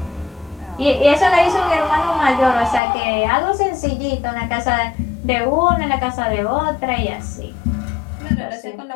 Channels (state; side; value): drops out; right; at 2.8 s